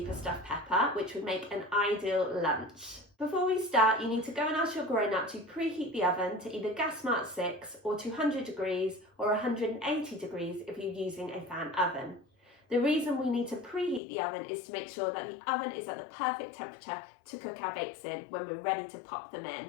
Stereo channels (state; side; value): drops out; right; at 14.0 s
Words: stuffed pepper, which would make an ideal lunch. Before we start, you need to go and ask your grown-up to preheat the oven to either gas mark 6 or 200 degrees or 180 degrees if you're using a fan oven. The reason we need to preheat the oven is to make sure that the oven is at the perfect temperature to cook our bakes in when we're ready to pop them